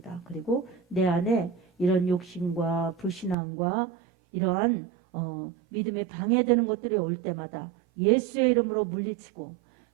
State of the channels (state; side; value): drops out; left; at 3.4 s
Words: 그리고 내 안에 이런 욕심과 불신앙과 이러한 믿음에 방해되는 것들이 올 때마다 예수의 이름으로 물리치고